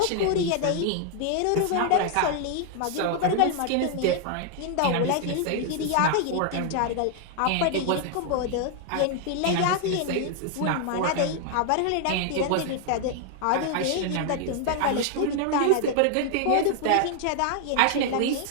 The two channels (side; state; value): both; different; correlation 0.00